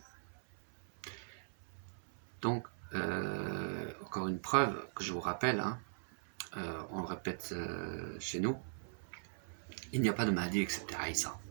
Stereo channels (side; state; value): left; silent; 51 dB below the other